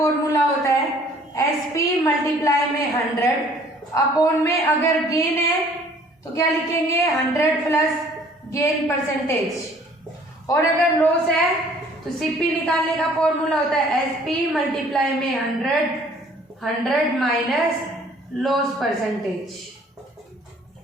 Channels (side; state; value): both; normal; correlation 0.56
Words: होता है एसपी मल्टीप्लाई में 100 अपॉन में अगर गेन है तो क्या लिखेंगे 100 प्लस गेन परसेंटेज, और अगर लॉस है तो सीपी निकालने का फॉर्मूला होता है एसपी मल्टीप्लाई में 100 माइनस लॉस परसेंटेज।